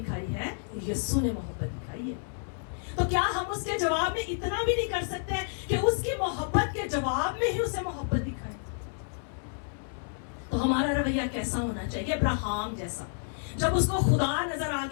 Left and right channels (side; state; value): right; silent; 58 dB below the other